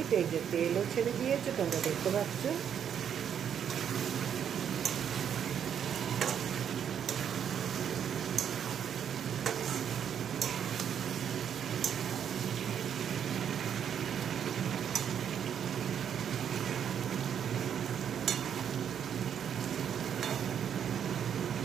এই যে তেলও ছেড়ে দিয়েছে, তোমরা দেখতে পাচ্ছ।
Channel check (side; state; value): left; quieter; 8.5 dB